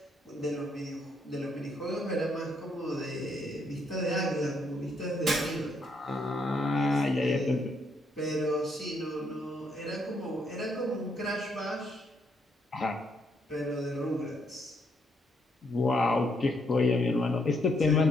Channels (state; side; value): normal; both; correlation 0.74